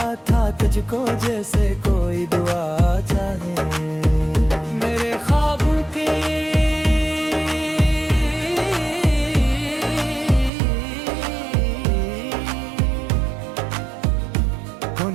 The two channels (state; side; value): drops out; left; at 10.5 s